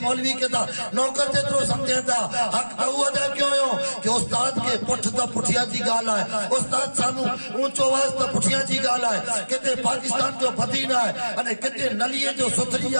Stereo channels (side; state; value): both; inverted; correlation -1.00